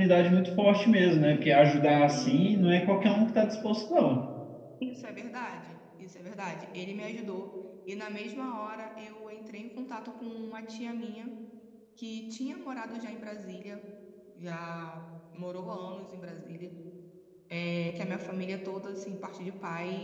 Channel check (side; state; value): both; identical; correlation 1.00